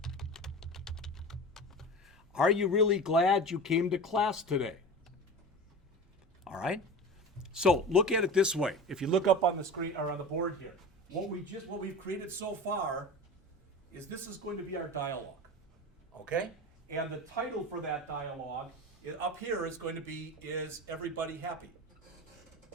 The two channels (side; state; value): both; normal; correlation 0.31